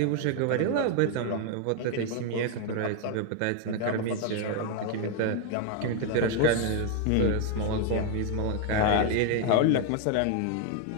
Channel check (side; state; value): both; different; correlation 0.01